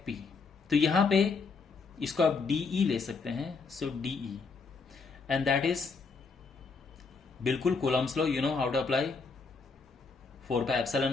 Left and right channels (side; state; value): right; quieter; 4.6 dB